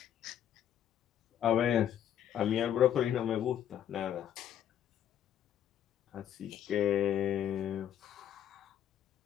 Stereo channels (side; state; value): right; quieter; 10.2 dB